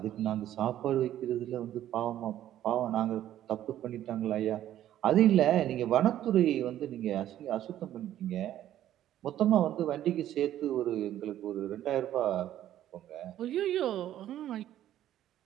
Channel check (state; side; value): quieter; left; 12.2 dB